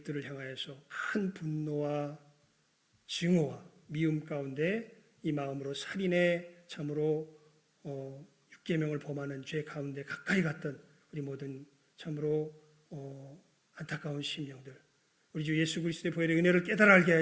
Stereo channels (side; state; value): both; identical; correlation 1.00